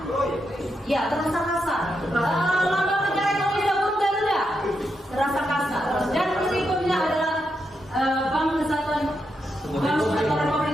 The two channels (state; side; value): normal; both; correlation 0.84